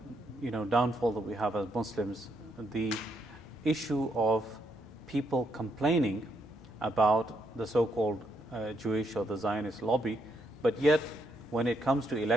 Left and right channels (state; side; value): normal; both; correlation 0.76